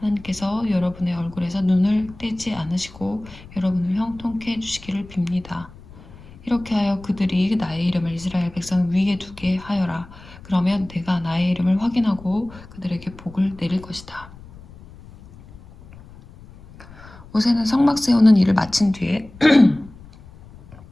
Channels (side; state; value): left; noise; rumble, 20 dB below the sound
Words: 여러분의 얼굴에서 눈을 떼지 않으시고 여러분을 형통케 해주시기를 빕니다. 이렇게 하여 그들이 나의 이름을 이스라엘 백성 위에 두게 하여라. 그러면 내가 나의 이름을 확인하고 그들에게 복을 내릴 것이다. 모세는 성막 세우는 일을 마친 뒤에